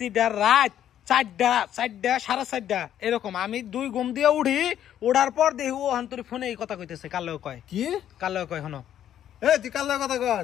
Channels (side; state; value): right; quieter; 10.7 dB